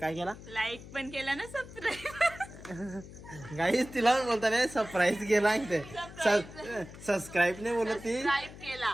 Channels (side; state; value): left; noise; hum, 16 dB below the sound